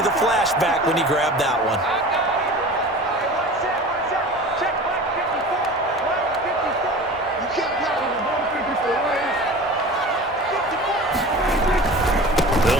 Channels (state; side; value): normal; both; correlation 0.37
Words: flashback when he grabbed that one.